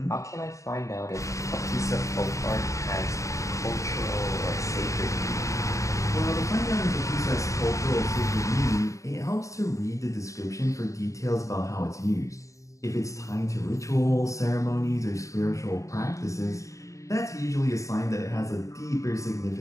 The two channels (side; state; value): right; late; 0.15 ms